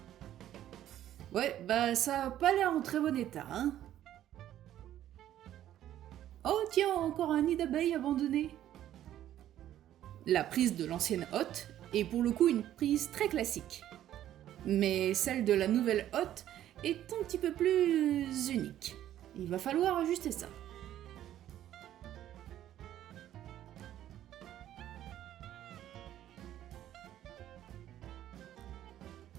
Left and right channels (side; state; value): left; quieter; 12.1 dB